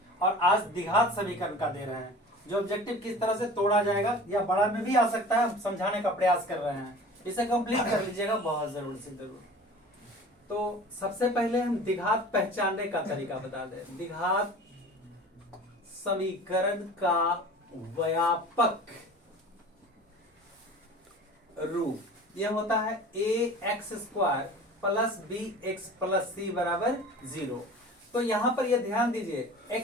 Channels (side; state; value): both; normal; correlation 0.41